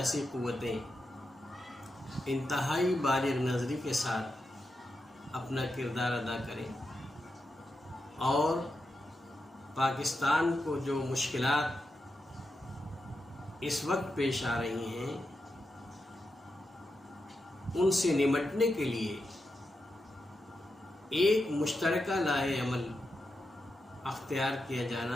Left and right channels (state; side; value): normal; both; correlation 0.87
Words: قوتیں انتہائی بالغ نظری کے ساتھ اپنا کردار ادا کریں اور پاکستان کو جو مشکلات اس وقت پیش آ رہی ہیں ان سے نمٹنے کے لیے ایک مشترکہ لائحہ عمل اختیار کیا